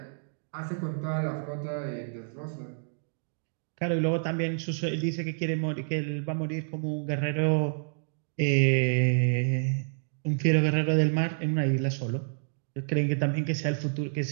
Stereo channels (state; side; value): silent; left; digital silence